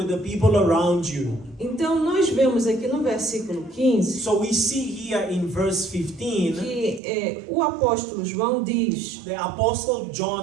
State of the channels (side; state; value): left; drops out; at 7.0 s